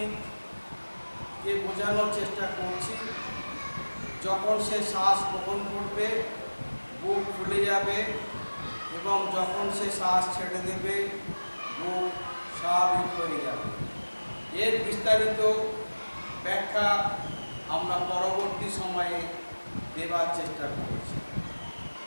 বোঝানোর চেষ্টা করছি, যখন সে শ্বাস গ্রহণ করবে বুক ফুলে যাবে এবং যখন সে শ্বাস ছেড়ে দেবে বুক স্বাভাবিক হয়ে যাবে। এর বিস্তারিত ব্যাখ্যা আমরা পরবর্তী সময়ে দেবার চেষ্টা করেছি।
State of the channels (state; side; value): inverted; both; correlation -1.00